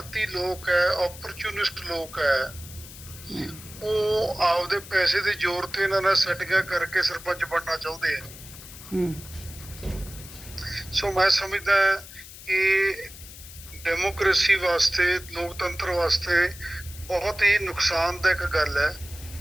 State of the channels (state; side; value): noise; left; hiss, 16 dB below the sound